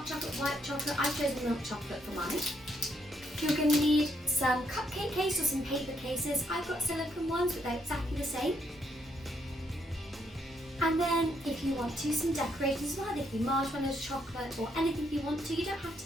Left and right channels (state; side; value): normal; both; correlation 0.74